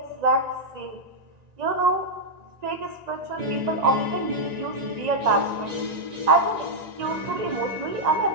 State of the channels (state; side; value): late; left; 1.9 ms